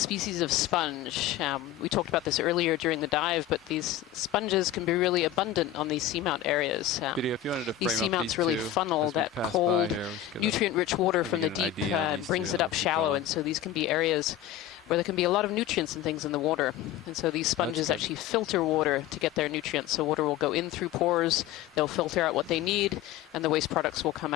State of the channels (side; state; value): right; quieter; 11.6 dB